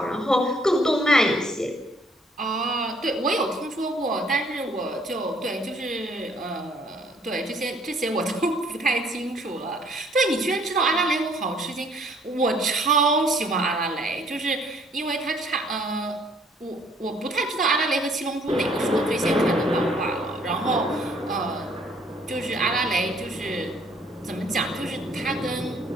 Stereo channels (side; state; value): both; normal; correlation 0.62